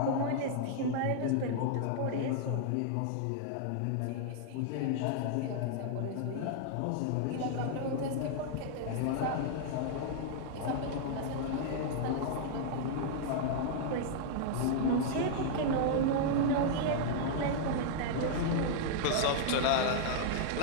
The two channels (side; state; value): both; different; correlation -0.01